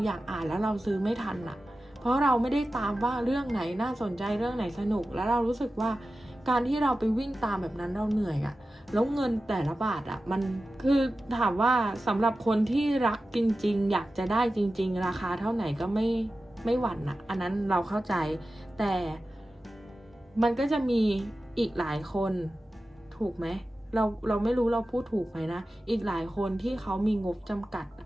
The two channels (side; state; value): both; normal; correlation 0.94